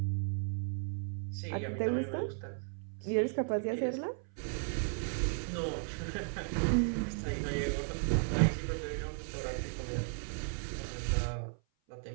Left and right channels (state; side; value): silent; left; 54 dB below the other